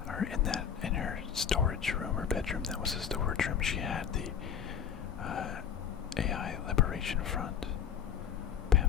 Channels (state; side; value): quieter; right; 8.0 dB